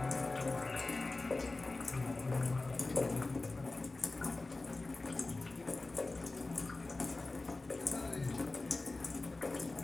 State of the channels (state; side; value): quieter; right; 3.3 dB